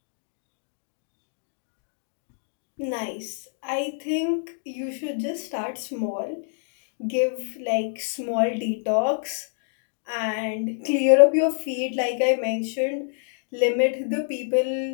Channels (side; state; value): right; silent; 61 dB below the other